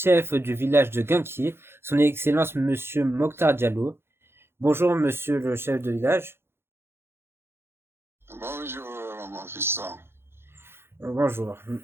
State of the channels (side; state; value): left; late; 0.11 ms